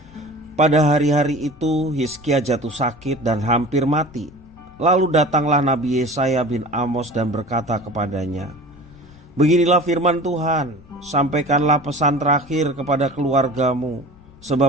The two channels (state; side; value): noise; left; rumble, 24 dB below the sound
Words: Pada hari-hari itu Hizkia jatuh sakit dan hampir mati. Lalu datanglah Nabi Yesaya bin Amos dan berkata kepadanya, "Beginilah firman Tuhan, sampaikanlah pesan terakhir kepada keluargamu,